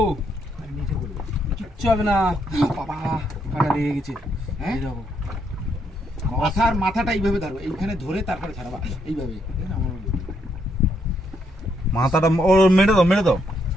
কিচ্ছু হবে না। বাবা কাটা লেগে গেছে। হ্যাঁ মাথাটা এইভাবে ধরো, এইখানে ধরে তারপরে ছাড়াবা এইভাবে। মাথাটা ওর মেরে দাও, মেরে দাও।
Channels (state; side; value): normal; both; correlation 0.75